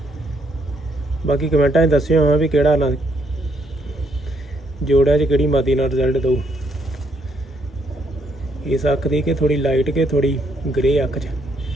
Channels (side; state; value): both; normal; correlation 0.72